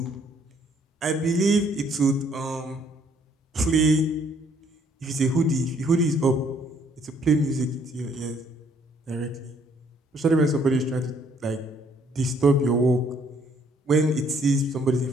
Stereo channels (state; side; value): normal; both; correlation 0.65